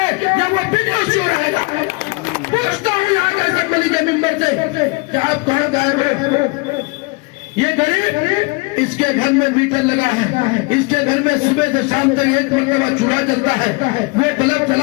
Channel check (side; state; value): right; quieter; 28.2 dB